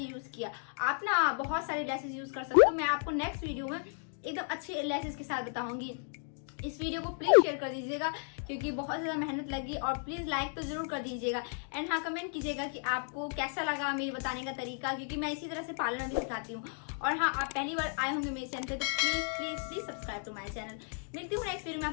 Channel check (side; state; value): right; silent; 55 dB below the other